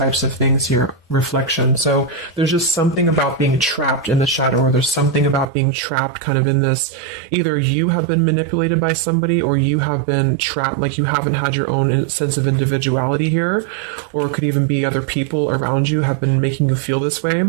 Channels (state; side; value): drops out; left; at 5.5 s